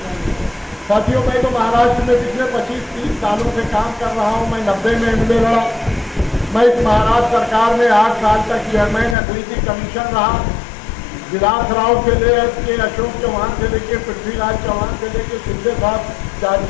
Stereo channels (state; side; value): drops out; right; at 9.2 s